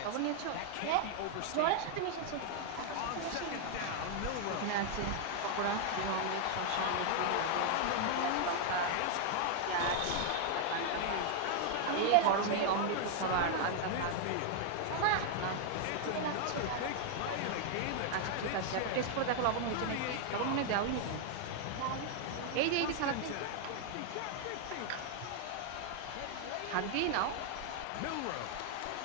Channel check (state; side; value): different; both; correlation 0.00